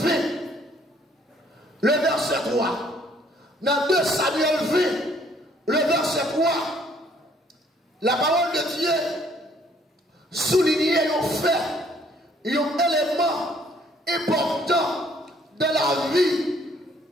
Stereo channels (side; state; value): both; normal; correlation 0.63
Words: le verset 3. Dans 2 Samuel 20, le verset 3, la parole de Dieu souligne un fait, un élément important de la vie